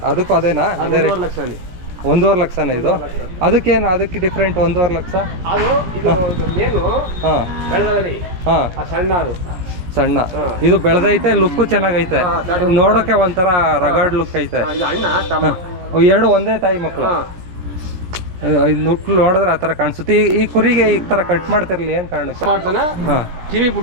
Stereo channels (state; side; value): late; left; 17 ms